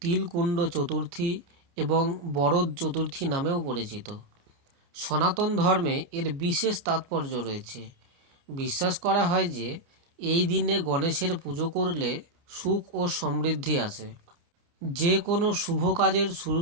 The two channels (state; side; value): late; left; 29 ms